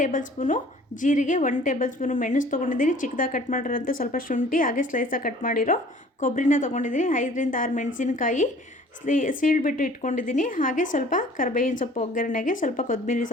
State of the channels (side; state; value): both; normal; correlation 0.51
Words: ಸ್ಪೂನು ಜೀರಿಗೆ, 1 ಟೇಬಲ್ ಸ್ಪೂನು ಮೆಣಸು ತೊಗೊಂಡಿದ್ದೀನಿ, ಚಿಕ್ಕದಾಗಿ ಕಟ್ ಮಾಡಿರೋಂಥ ಸ್ವಲ್ಪ ಶುಂಠಿ, ಹಾಗೆ ಸ್ಲೈಸಾಗಿ ಕಟ್ ಮಾಡಿರೋ ಕೊಬ್ಬರಿನ ತೊಗೊಂಡಿದ್ದೀನಿ, 5 ರಿಂದ 6 ಮೆಣಸಿನಕಾಯಿ ಸೀಳ್ಬಿಟ್ಟು ಇಟ್ಕೊಂಡಿದ್ದೀನಿ, ಹಾಗೆ ಸ್ವಲ್ಪ ಕರಿಬೇವಿನ ಸೊಪ್ಪು ಒಗ್ಗರಣೆಗೆ ಸ್ವಲ್ಪ ಕೊತ್ತಂಬರಿ